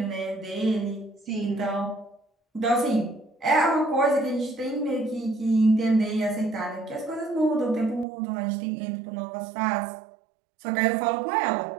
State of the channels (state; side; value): drops out; left; at 8.1 s